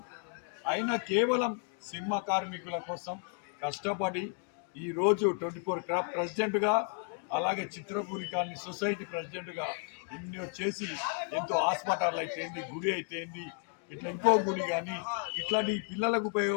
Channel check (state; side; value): quieter; right; 39.7 dB